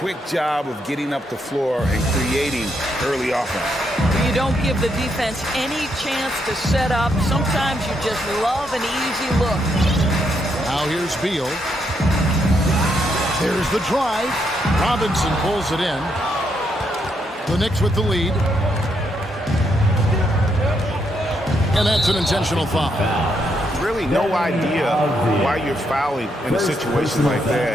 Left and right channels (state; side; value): normal; both; correlation 0.77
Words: job of getting up the floor and creating early offense. You don't give the defense any chance to set up. Sometimes you just love an easy look. Now here's Beal. There's the drive. Robinson pulls it in. The Knicks with the lead. And that's an intentional foul. Really no idea why you're fouling in a situation like